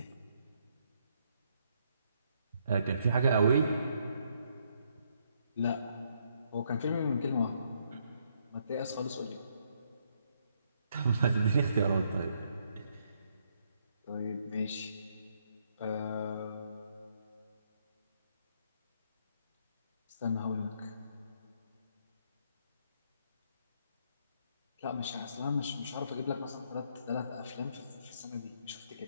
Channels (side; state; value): both; inverted; correlation -0.73